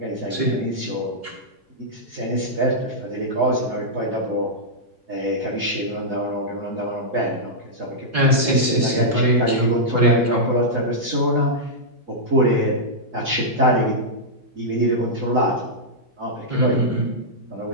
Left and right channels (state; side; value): late; left; 2.1 ms